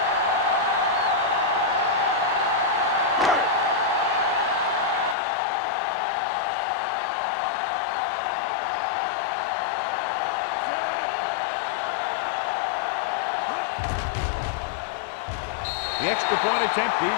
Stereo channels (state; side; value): drops out; right; at 5.2 s